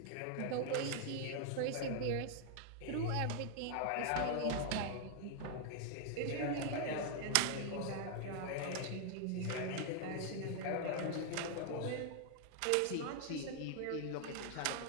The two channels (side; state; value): both; different; correlation 0.00